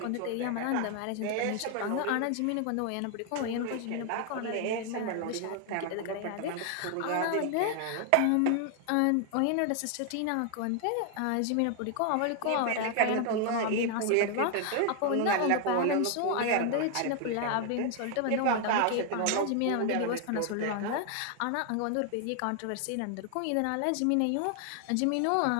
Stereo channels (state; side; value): different; both; correlation 0.00